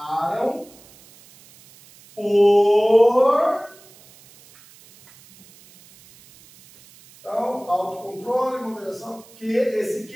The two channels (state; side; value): noise; right; hiss, 25 dB below the sound